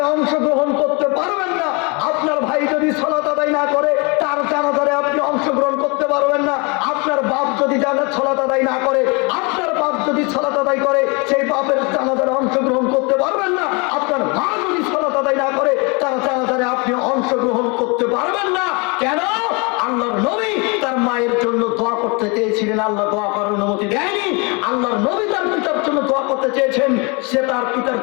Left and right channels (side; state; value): right; quieter; 30.1 dB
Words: অংশগ্রহণ করতে পারবেন না। আপনার ভাই যদি সালাত আদায় না করে, তার জানাজারে আপনি অংশগ্রহণ করতে পারবেন না। আপনার বাপ যদি সালাত আদায় না করে, আপনার বাপ যদি সালাত আদায় করে, সেই বাপের জানাজারে অংশগ্রহণ করতে পারবেন না। আপনার মা যদি সালাত আদায় আদায় না করে তারা জানাজারে আপনি অংশগ্রহণ করতে পারবেন না। কেন? আল্লাহর নবী তার মায়ের জন্য দোয়া করতে চেয়েছিলেন, আল্লাহ দোয়া করার অনুমতি দেয়নি। আল্লাহর নবী তার পিতার জন্য দোয়া করতে চেয়েছেন, সে তার পিতার